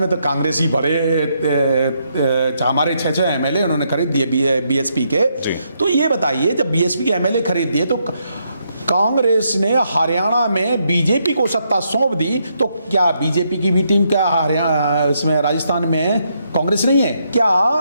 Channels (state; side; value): inverted; both; correlation -0.77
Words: तो कांग्रेस ही बड़े, हमारे 6 एमएलए उन्होंने खरीद दिए बीएसपी के। तो ये बताइए, जब बीएसपी के एमएलए खरीद दिए तो कांग्रेस ने हरियाणा में बीजेपी को सत्ता सौंप दी, तो क्या बीजेपी की भी टीम क्या हरियाणा इसमें राजस्थान में कांग्रेस नहीं है क्या?